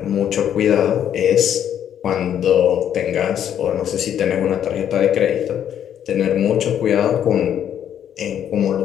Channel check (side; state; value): right; quieter; 9.7 dB